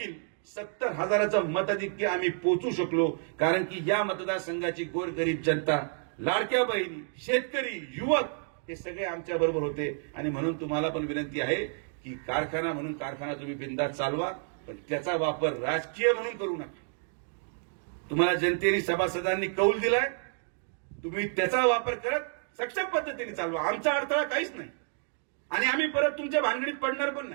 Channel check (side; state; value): left; silent; 58 dB below the other